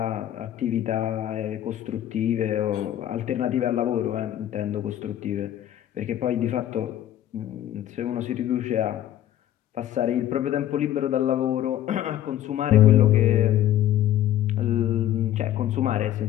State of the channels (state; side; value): quieter; right; 12.2 dB